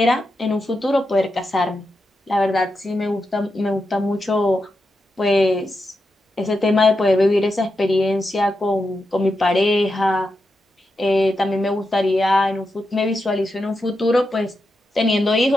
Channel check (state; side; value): normal; both; correlation 0.87